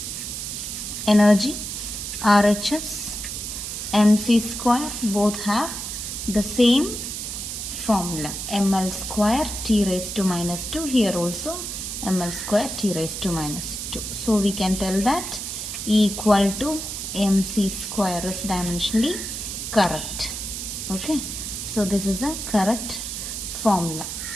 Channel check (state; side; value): noise; right; hiss, 6 dB below the sound